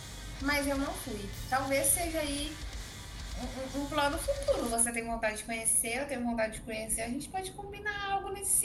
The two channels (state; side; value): identical; both; correlation 1.00